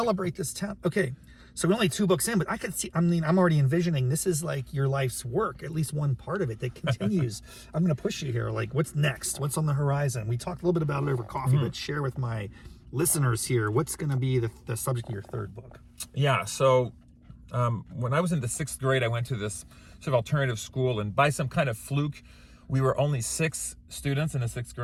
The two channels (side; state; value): both; identical; correlation 1.00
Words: this town. Okay, so we're only 2 books in, but I could see, I'm already envisioning this is like your life's work, at least one part of it that continues. I'm going to push you here. Like, what's next? What's on the horizon? We talked a little bit about it over coffee, but share with my listeners here, what's going to be the subject of your 3rd book? Yeah, so when I was in the 6th grade, I went to this sort of alternative school, and by some kind of fluke, we were only 6 students in the 6th